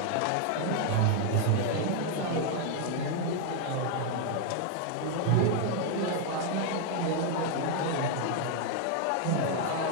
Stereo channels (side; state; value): both; different; correlation 0.00